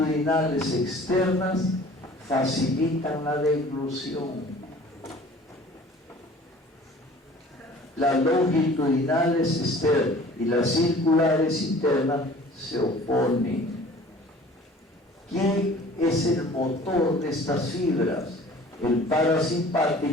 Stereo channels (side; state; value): both; normal; correlation 0.48